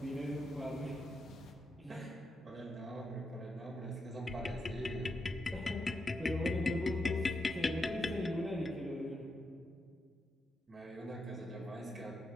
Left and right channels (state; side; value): normal; both; correlation 0.84